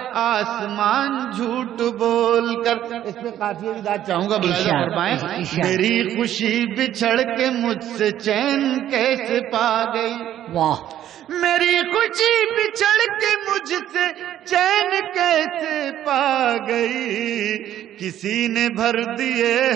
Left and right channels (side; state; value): left; quieter; 11.7 dB